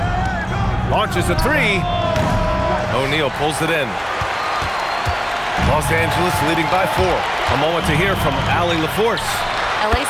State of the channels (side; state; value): both; identical; correlation 1.00